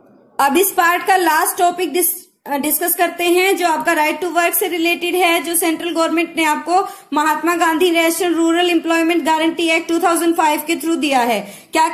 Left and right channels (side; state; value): both; identical; correlation 1.00